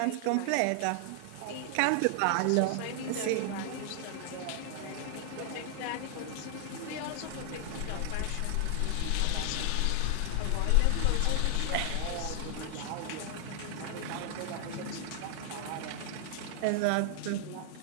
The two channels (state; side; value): different; both; correlation 0.00